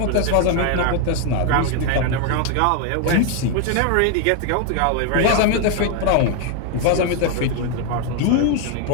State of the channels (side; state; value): both; different; correlation 0.01